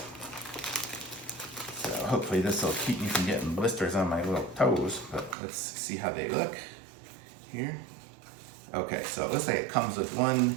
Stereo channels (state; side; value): drops out; left; at 5.4 s